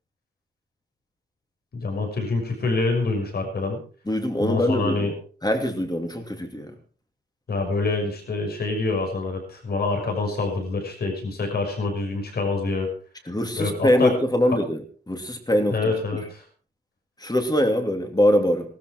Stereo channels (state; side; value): normal; both; correlation 0.70